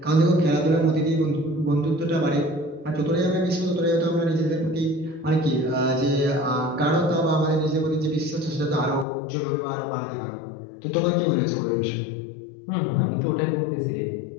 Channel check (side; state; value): right; drops out; at 9.1 s